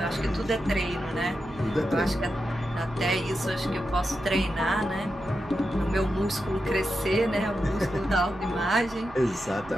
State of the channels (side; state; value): right; noise; hum, 19 dB below the sound